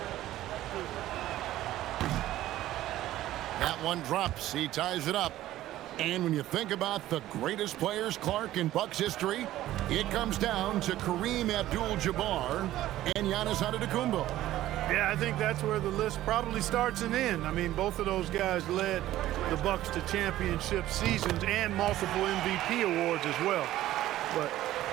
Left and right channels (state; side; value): quieter; left; 14.4 dB